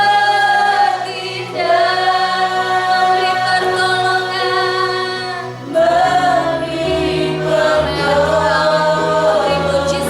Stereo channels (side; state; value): both; identical; correlation 1.00